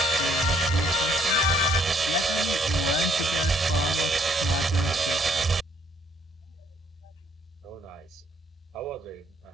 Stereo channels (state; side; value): normal; both; correlation 0.67